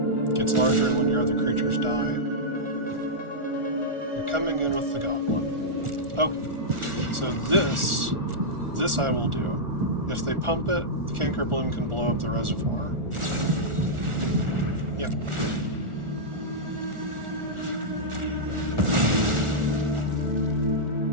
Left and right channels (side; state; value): left; late; 1.4 ms